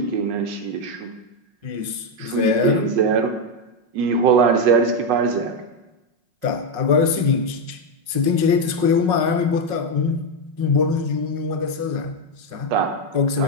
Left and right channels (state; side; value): late; left; 5.5 ms